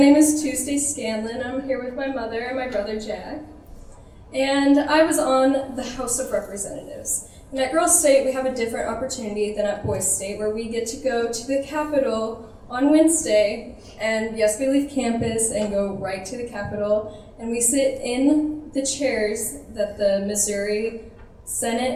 is Tuesday Scanlon. I'm here with my mother and my brother Jack. And I was on the House of Representatives. And at Girls State, we have a different opportunity than at Boise State, where we get to go to the Capitol on Wednesday. And yes, we leave campus and go right to the Capitol. And we sit in the chairs that the Missouri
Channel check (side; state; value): both; identical; correlation 1.00